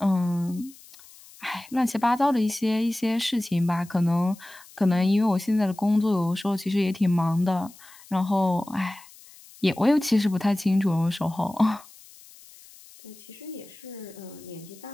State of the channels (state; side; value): noise; left; hiss, 22 dB below the sound